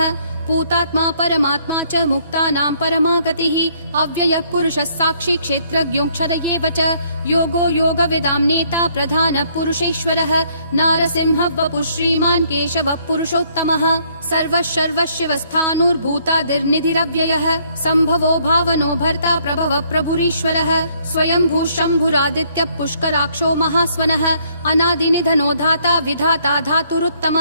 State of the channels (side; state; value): both; inverted; correlation -0.66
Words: भूतात्मा परमात्मा च मुक्तानां परमा गतिः अव्ययः पुरुषः साक्षी क्षेत्रज्ञोऽक्षर एव च योगो योगविदां नेता प्रधानः पुरुषेश्वरः नारसिंहः वपुः श्रीमान् केशवः पुरुषोत्तमः सर्वः सर्वशिवस्थाणुर्भूतादिर्निधिरव्ययः सम्भवो भावनो भर्ता प्रभवः प्रभुरीश्वरः स्वयंभू शम्भुरादित्यः पुष्कराक्षो महास्वनः अनादिनिधनो धाता विधाता